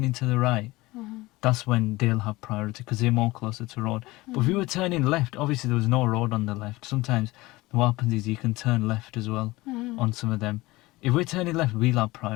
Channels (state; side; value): quieter; right; 20.3 dB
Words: to the right, that's when they'll have priority because they're more closer to road. But if we were turning left, obviously there was no road on the left. Sometimes what happens is you can turn left as well on some of them. If we're turning left, we'll have